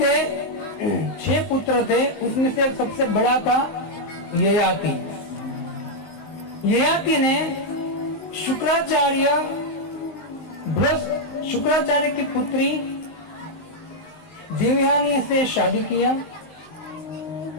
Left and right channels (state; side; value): late; right; 19 ms